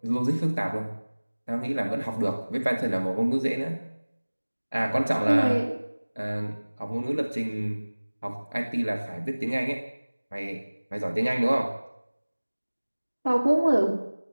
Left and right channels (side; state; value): both; inverted; correlation -1.00